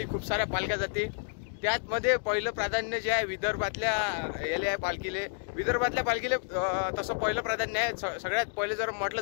खूप साऱ्या पालख्या जाते। त्यातमध्ये पहिलं प्राधान्य जे आहे विदर्भातल्या याले आहे पालखीले। विदर्भातल्या पालखीले तसं पहिलं प्राधान्य आहे। सगळ्यात पहिले जर म्हटलं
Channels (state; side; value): silent; right; 58 dB below the other